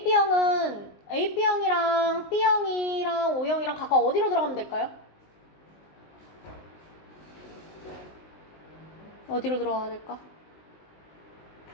AB형이랑 B형이랑 O형이랑 각각 어디로 들어가면 될까요? 어디로 들어가야 될까?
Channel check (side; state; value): right; late; 19 ms